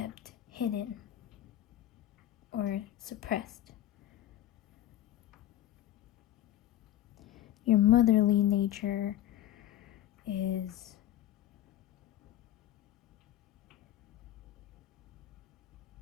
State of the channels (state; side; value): quieter; right; 12.8 dB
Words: hidden or suppressed. Your motherly nature is